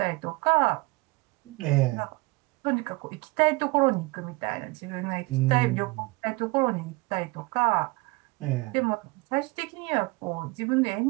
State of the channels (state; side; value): quieter; left; 24.2 dB